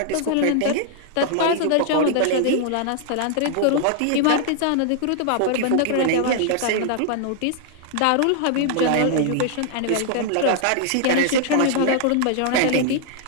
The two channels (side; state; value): both; different; correlation -0.01